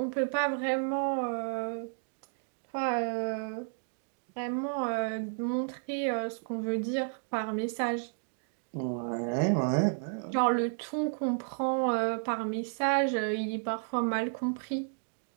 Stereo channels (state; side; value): silent; left; digital silence